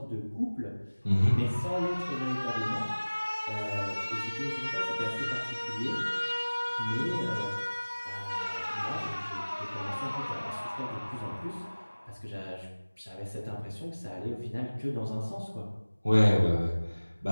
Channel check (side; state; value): both; inverted; correlation -1.00